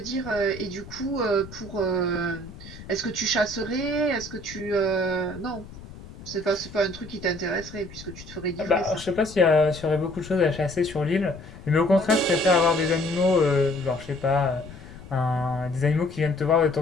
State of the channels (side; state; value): left; noise; rumble, 16 dB below the sound